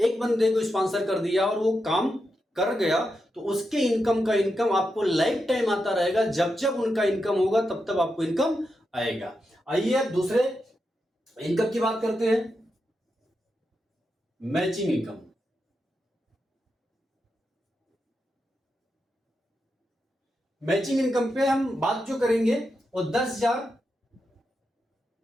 एक बंदे को स्पॉन्सर कर दिया और वो काम कर गया तो उसके इनकम का इनकम आपको लाइफ टाइम आता रहेगा। जब जब उनका इनकम होगा तब तब आपको इनकम आएगा। आइए अब दूसरे इनकम की बात करते हैं, मैचिंग इनकम। मैचिंग इनकम पे हम बात जो करेंगे वो 10,000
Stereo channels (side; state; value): both; normal; correlation 0.86